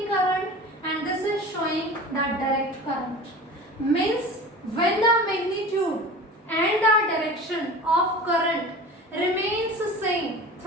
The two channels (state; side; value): normal; both; correlation 0.36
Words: current and this is showing the direct current. Means when the magnitude and the direction of current remains same